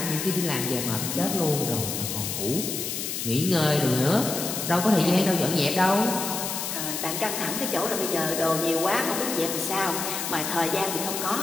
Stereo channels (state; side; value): noise; left; hiss, 3 dB below the sound